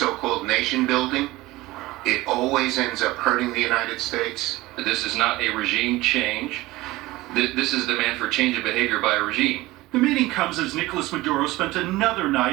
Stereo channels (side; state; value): left; quieter; 19.0 dB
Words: nation building, it always ends up hurting the United States. This is not a regime change. This is demand for change of behavior by a regime. The meeting comes as Nicolas Maduro spent another